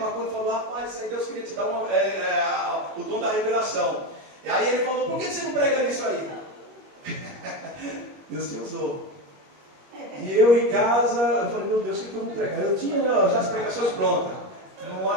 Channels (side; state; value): left; late; 21 ms